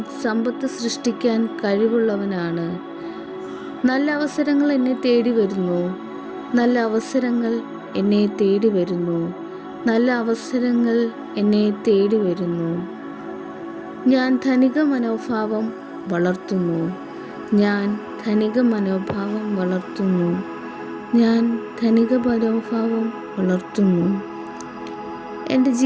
സമ്പത്ത് സൃഷ്ടിക്കാൻ കഴിവുള്ളവനാണ്. നല്ല അവസരങ്ങൾ എന്നെ തേടി വരുന്നു. നല്ല അവസരങ്ങൾ എന്നെ തേടി വരുന്നു. നല്ല അവസരങ്ങൾ എന്നെ തേടി വരുന്നു. ഞാൻ ധനിക മനോഭാവം വളർത്തുന്നു. ഞാൻ ധനിക മനോഭാവം വളർത്തുന്നു. ഞാൻ ധനിക മനോഭാവം വളർത്തുന്നു. എൻ്റെ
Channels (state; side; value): identical; both; correlation 1.00